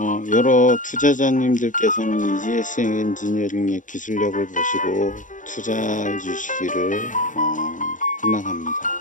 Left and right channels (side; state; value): right; late; 0.37 ms